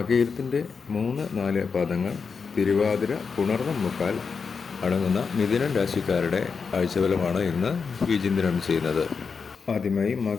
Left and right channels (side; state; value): right; quieter; 5.4 dB